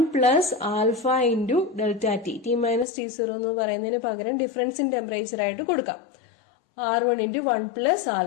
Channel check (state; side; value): drops out; right; at 2.9 s